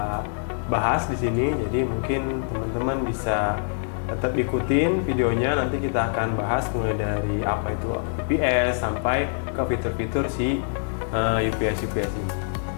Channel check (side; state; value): right; silent; 62 dB below the other